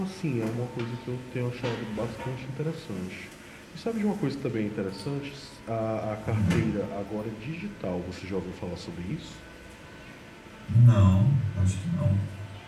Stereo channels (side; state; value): both; identical; correlation 1.00